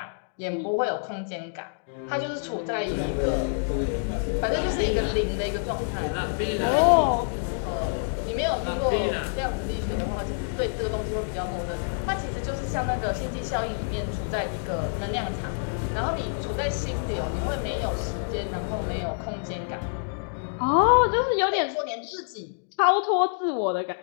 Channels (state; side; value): silent; right; digital silence